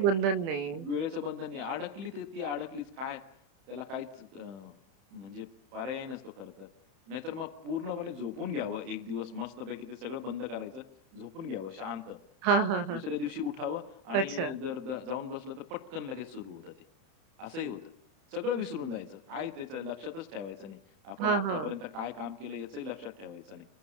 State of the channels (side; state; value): left; late; 31 ms